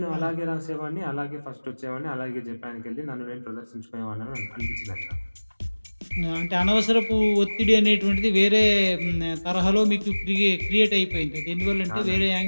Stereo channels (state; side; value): inverted; both; correlation -1.00